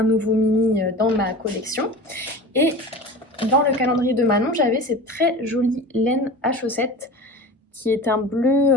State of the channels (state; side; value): normal; both; correlation 0.35